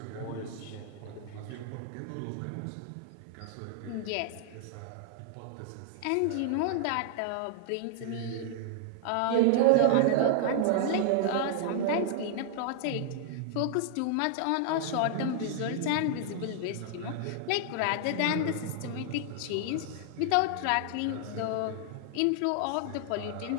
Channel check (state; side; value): different; both; correlation 0.00